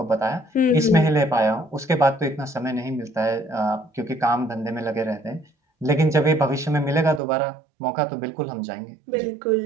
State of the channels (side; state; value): left; drops out; at 7.2 s